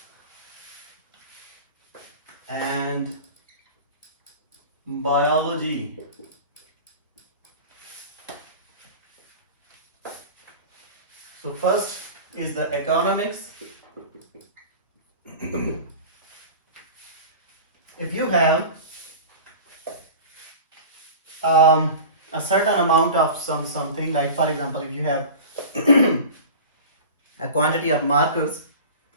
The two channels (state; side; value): inverted; both; correlation -0.35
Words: and biology. So first is the economics. If you have a certain amount of something, like for example, if you have a quantity of markers